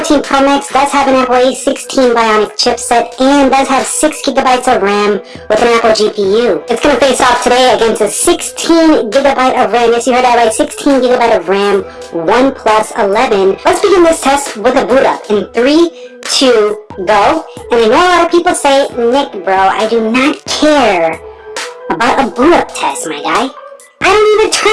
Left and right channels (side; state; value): both; identical; correlation 1.00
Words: Pro Max does have an Apple A16 Bionic chipset and does have 6 gigabytes of RAM with an Apple GPU. It's going to face off today against a 16 gigabyte of RAM. Yes, you heard that right, 16 gigabyte of RAM OnePlus 11. Let's begin this test with a boot up in 3, 2, go. And I know a lot of people say, Nick, bro, I do not care about a boot up test, my guy. I don't even